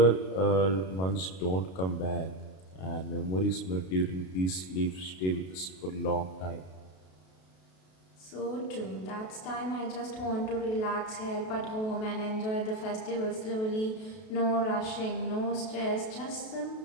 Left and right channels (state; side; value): late; right; 32 ms